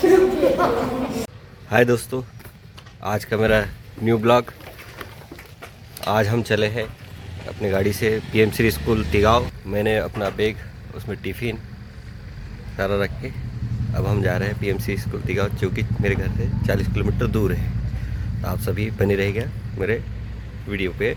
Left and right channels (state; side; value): identical; both; correlation 1.00